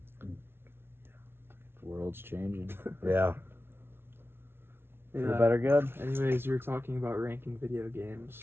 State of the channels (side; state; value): left; late; 0.11 ms